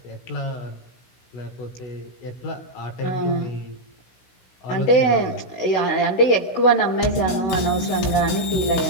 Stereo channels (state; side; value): late; right; 16 ms